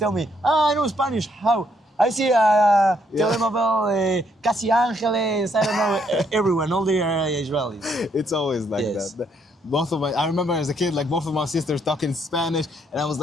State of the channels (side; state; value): both; normal; correlation 0.72